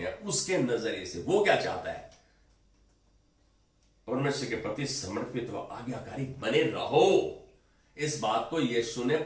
हैं उसके नजरिए से। वो क्या चाहता है? परमेश्वर के प्रति समर्पित व आज्ञाकारी बने रहो। इस बात को यीशु ने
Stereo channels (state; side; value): identical; both; correlation 1.00